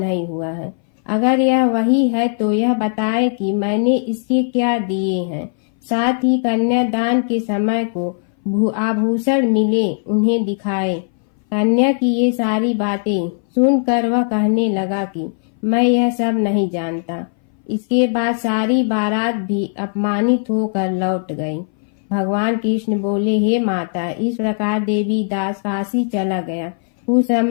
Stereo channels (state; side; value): silent; right; 61 dB below the other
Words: हुआ है। अगर यह वही है तो यह बताए कि मैंने इसके क्या दिए हैं। साथ ही कन्यादान के समय को आभूषण मिले उन्हें दिखाए। कन्या की ये सारी बातें सुनकर वह कहने लगा कि मैं यह सब नहीं जानता। इसके बाद सारी बारात भी अपमानित होकर लौट गई। भगवान कृष्ण बोले, हे माता, इस प्रकार देवी दास काशी चला गया। कुछ